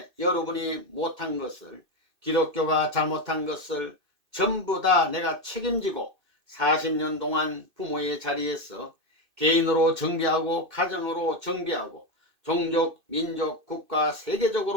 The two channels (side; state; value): left; late; 2.6 ms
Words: 여러분이 못한 것을, 기독교가 잘못한 것을 전부 다 내가 책임지고 40년 동안 부모의 자리에서 개인으로 정비하고 가정으로 정비하고 종족, 민족, 국가,